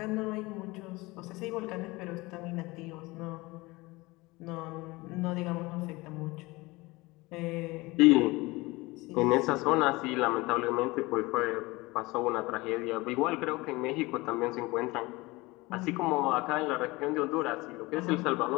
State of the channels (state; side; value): quieter; right; 22.3 dB